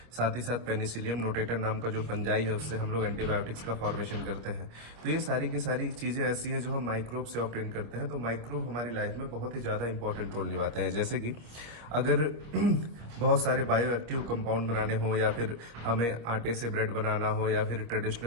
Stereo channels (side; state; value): left; late; 26 ms